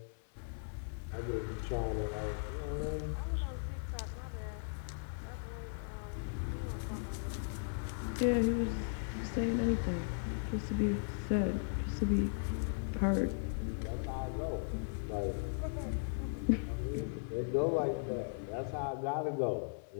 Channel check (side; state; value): right; silent; 53 dB below the other